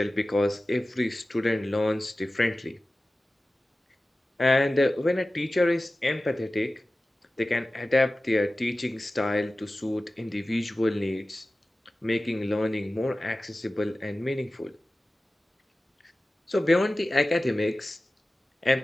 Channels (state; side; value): normal; both; correlation 0.96